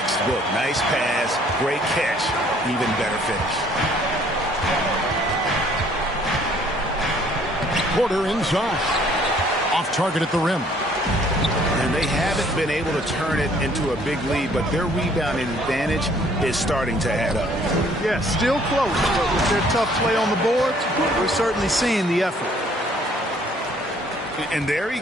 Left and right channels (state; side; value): normal; both; correlation 0.60